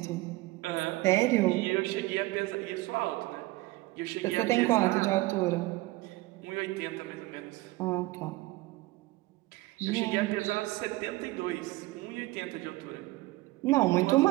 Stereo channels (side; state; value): left; quieter; 19.9 dB